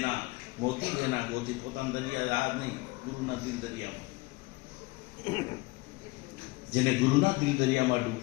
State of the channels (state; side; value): quieter; right; 23.5 dB